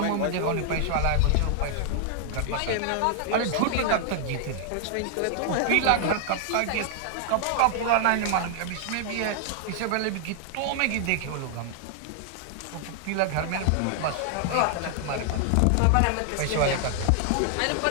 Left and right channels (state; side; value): different; both; correlation 0.00